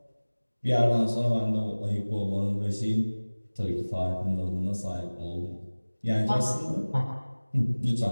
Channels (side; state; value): both; inverted; correlation -1.00